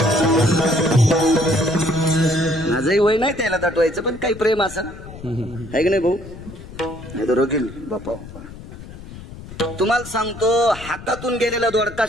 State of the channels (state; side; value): noise; left; rumble, 15 dB below the sound